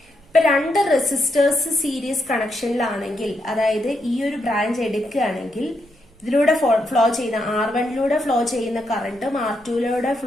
ഇപ്പൊ രണ്ട് റെസിസ്റ്റേഴ്സ് സീരീസ് കണക്ഷനിലാണെങ്കിൽ, അതായത് ഈ ഒരു ബ്രാഞ്ച് എടുക്കുകയാണെങ്കിൽ ഇതിലൂടെ ഫ്ലോ ചെയ്യുന്ന R1 ഫ്ലോ ചെയ്യുന്ന കറന്റും R2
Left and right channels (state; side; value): noise; right; rumble, 29 dB below the sound